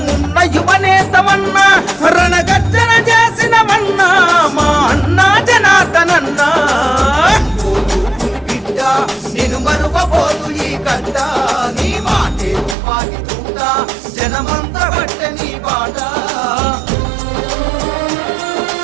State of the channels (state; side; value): drops out; left; at 12.8 s